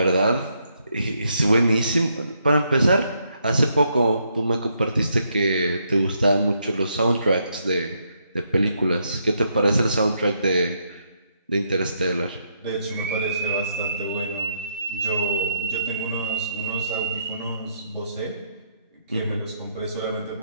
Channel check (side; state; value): both; inverted; correlation -0.76